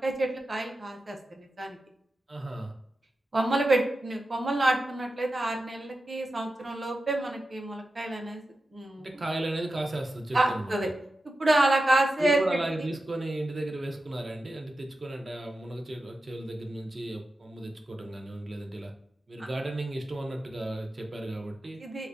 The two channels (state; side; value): normal; both; correlation 0.92